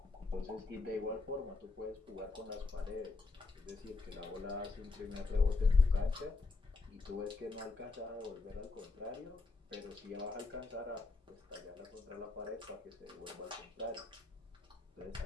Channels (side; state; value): right; quieter; 3.9 dB